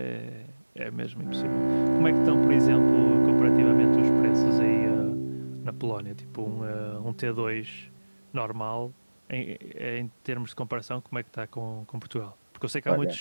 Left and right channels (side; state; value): both; inverted; correlation -1.00